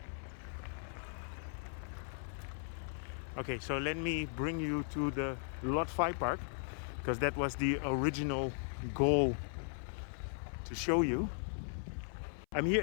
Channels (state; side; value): silent; right; 53 dB below the other